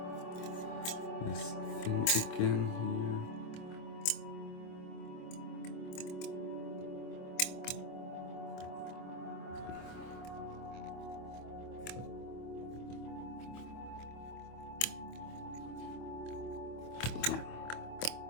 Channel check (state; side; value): late; right; 25 ms